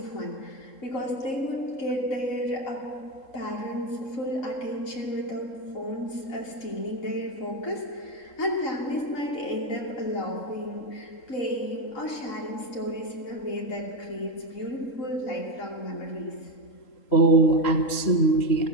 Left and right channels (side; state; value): right; late; 3.7 ms